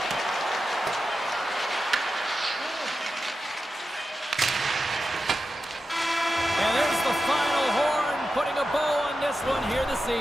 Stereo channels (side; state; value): both; normal; correlation 0.91